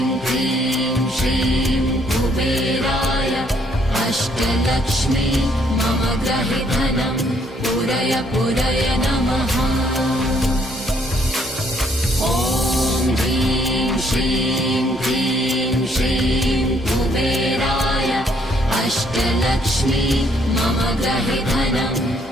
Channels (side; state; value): both; normal; correlation 0.67